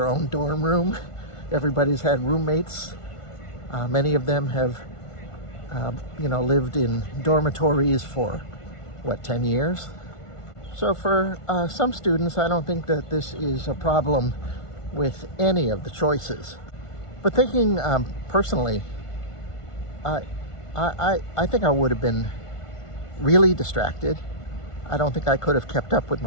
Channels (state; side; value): late; right; 1.5 ms